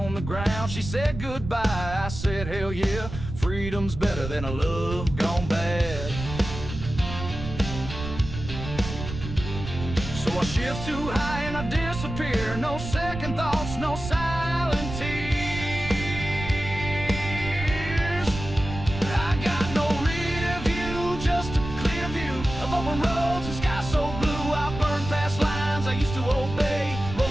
the ground. She said goodbye, I said hell yeah. Freedom's better than a love gone bad. So I shift too high and I disappear. No second thoughts, no silent tears. I got no rear view, just a clear view of open roads and sky so blue. I burn past lines I used to obey,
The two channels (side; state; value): right; noise; rumble, 8 dB below the sound